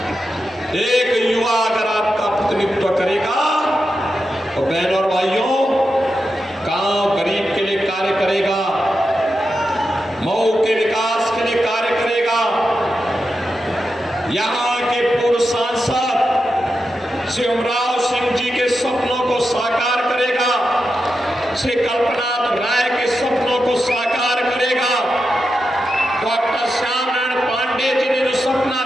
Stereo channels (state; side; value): normal; both; correlation 0.88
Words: एक युवा अगर आपका प्रतिनिधित्व करेगा तो बहनों और भाइयों, गांव गरीब के लिए कार्य करेगा, मऊ के विकास के लिए कार्य करेगा। यहां के पूर्व सांसद श्री उमराव सिंह जी के सपनों को साकार करेगा, श्री कल्पनाथ राय के सपनों को साकार करेगा। डॉक्टर श्याम नारायण पांडे जी ने जो सपना